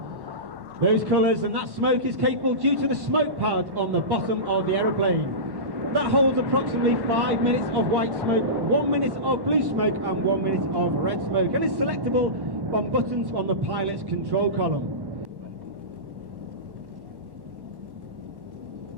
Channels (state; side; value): late; left; 1.1 ms